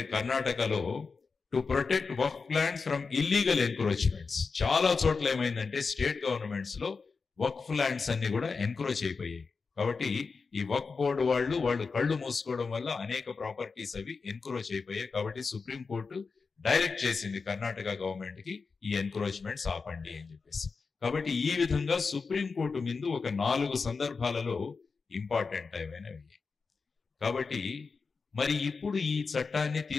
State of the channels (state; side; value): quieter; right; 4.7 dB